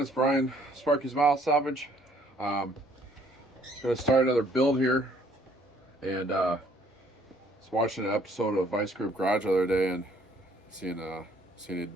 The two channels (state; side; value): normal; both; correlation 0.62